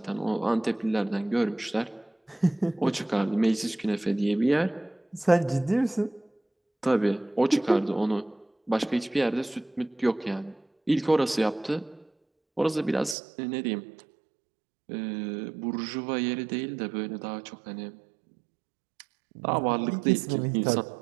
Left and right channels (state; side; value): drops out; left; at 13.2 s